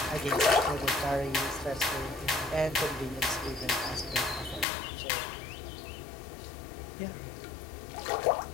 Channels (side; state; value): right; drops out; at 4.7 s